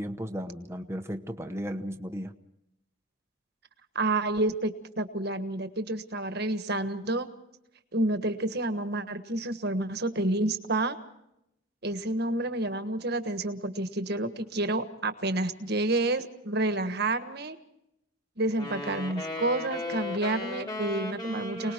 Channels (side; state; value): both; normal; correlation 0.26